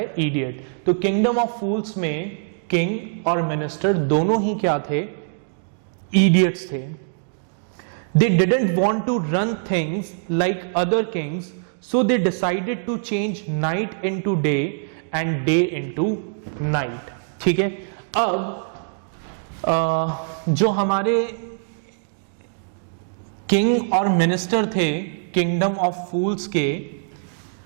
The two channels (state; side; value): silent; left; digital silence